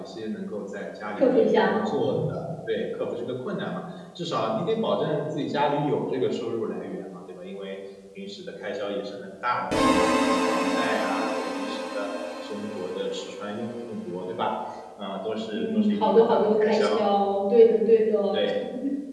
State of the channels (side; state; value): both; identical; correlation 1.00